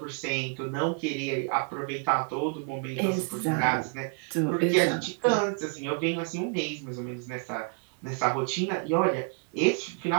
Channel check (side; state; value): left; quieter; 38.6 dB